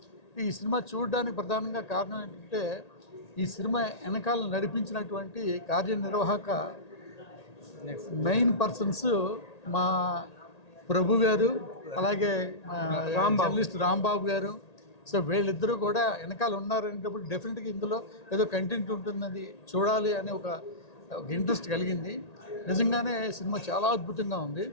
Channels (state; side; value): late; right; 1.8 ms